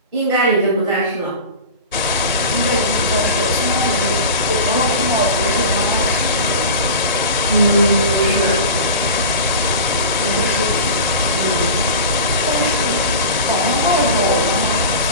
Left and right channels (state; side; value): inverted; both; correlation -0.31